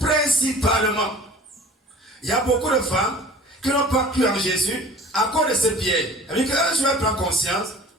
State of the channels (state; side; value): normal; both; correlation 0.45